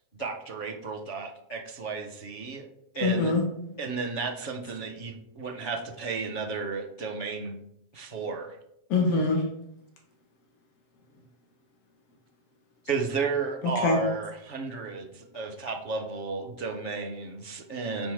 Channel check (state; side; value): late; right; 7.1 ms